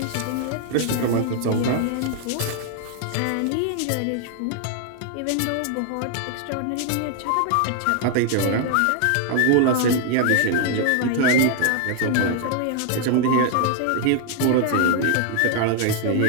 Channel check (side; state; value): both; different; correlation 0.00